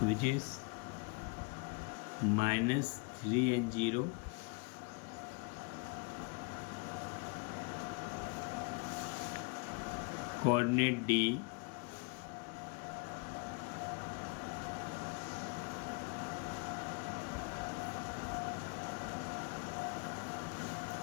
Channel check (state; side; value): quieter; right; 30.7 dB